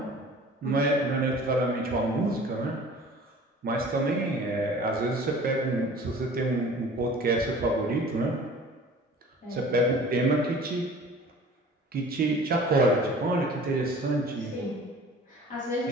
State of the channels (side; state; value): both; normal; correlation 0.46